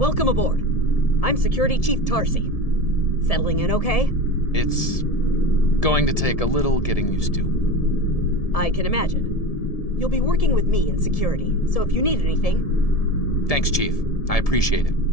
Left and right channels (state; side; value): late; right; 1.7 ms